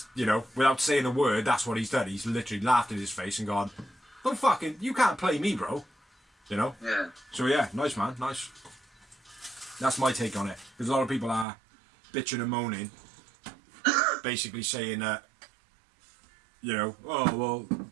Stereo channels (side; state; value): left; drops out; at 11.5 s